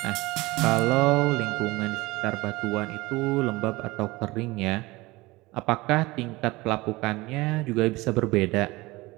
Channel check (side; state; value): left; quieter; 21.4 dB